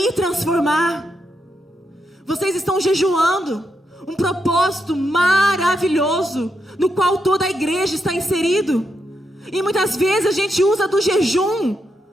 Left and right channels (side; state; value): both; normal; correlation 0.82